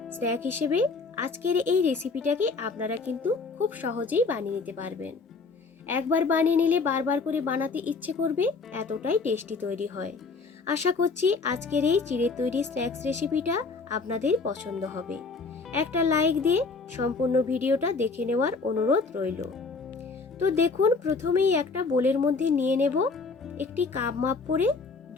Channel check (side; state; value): right; quieter; 4.3 dB